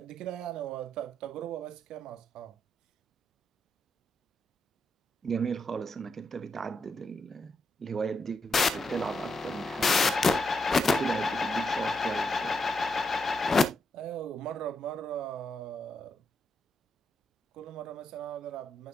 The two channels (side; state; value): both; normal; correlation 0.82